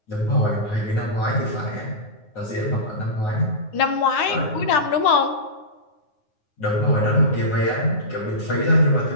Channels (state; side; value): late; right; 9.5 ms